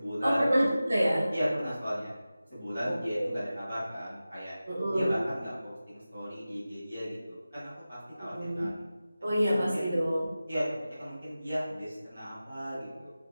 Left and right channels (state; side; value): inverted; both; correlation -0.95